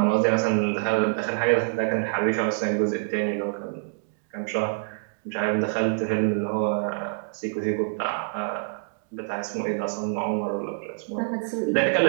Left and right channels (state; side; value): silent; left; digital silence